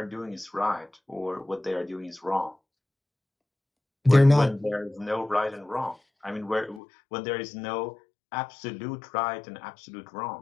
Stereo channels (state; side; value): drops out; right; at 6.8 s